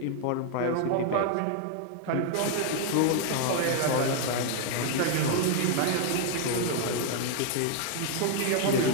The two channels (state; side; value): different; both; correlation 0.00